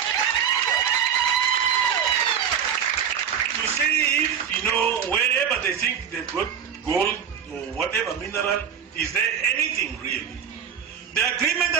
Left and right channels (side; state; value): left; quieter; 8.0 dB